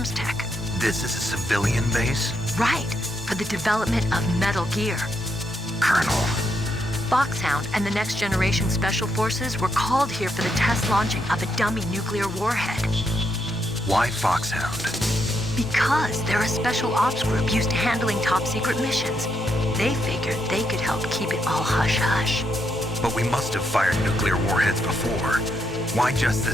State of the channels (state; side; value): normal; both; correlation 0.78